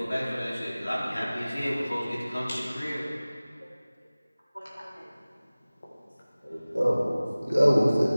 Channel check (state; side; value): inverted; both; correlation -0.98